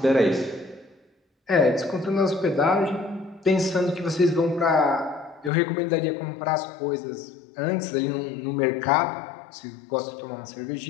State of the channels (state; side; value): drops out; right; at 5.5 s